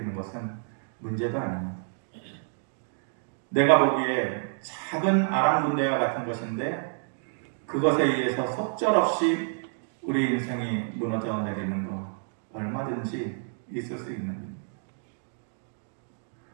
것은 문제도 아닙니다. 내가 보기에 작은 아람 군대와 같은 것인데 그것에 의해서 속절없이 우리 인생이 무너져 내리는 것 얼마든지 있을 수 있는 일입니다.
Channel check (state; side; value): silent; left; 59 dB below the other